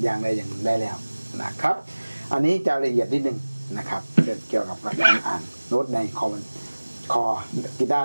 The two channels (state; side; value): inverted; both; correlation -1.00